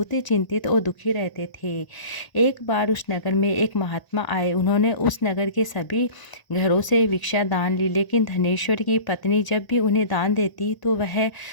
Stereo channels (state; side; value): late; right; 1.0 ms